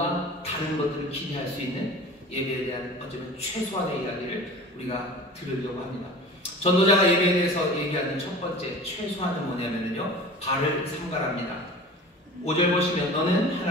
다른 것들을 기대할 수 있는 예배에 대한 어쩌면 최소한의 이야기를 우리가 들으려고 합니다. 전도자가 예배에 대해서 얘기하는 첫 번째 최소한은 뭐냐면요, 발을 삼가랍니다. 5절 보시면 너는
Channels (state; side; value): normal; both; correlation 0.39